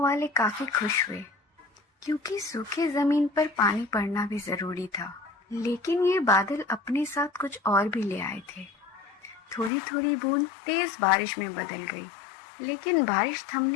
वाले काफी खुश हुए, क्योंकि सूखे जमीन पर पानी पड़ना भी जरूरी था। लेकिन ये बादल अपने साथ कुछ और भी ले आए थे। थोड़ी थोड़ी बूंद तेज बारिश में बदल गई, लेकिन बारिश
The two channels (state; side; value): drops out; right; at 9.7 s